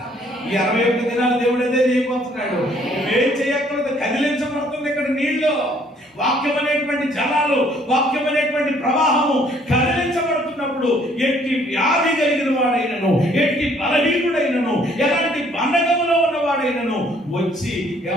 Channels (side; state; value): both; normal; correlation 0.62